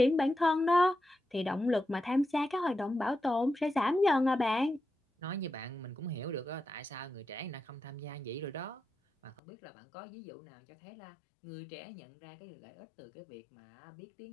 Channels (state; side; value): drops out; right; at 9.4 s